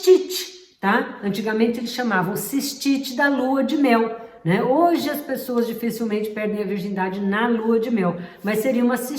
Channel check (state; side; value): identical; both; correlation 1.00